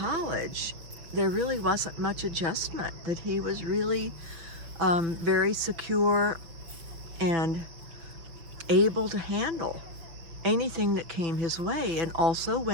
there really wasn't much adjustment, that he was really very secure and able to handle anything that came his way. And also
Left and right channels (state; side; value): late; left; 6.0 ms